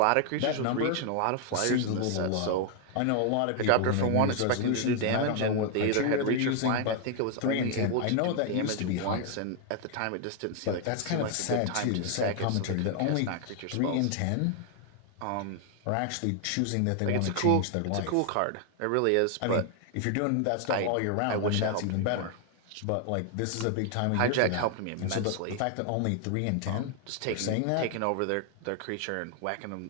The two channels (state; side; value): different; both; correlation 0.00